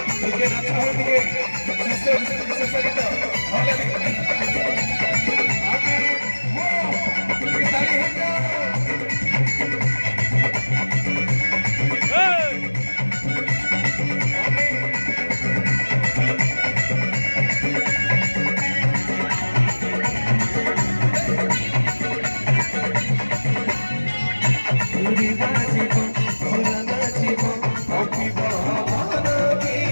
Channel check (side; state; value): both; inverted; correlation -1.00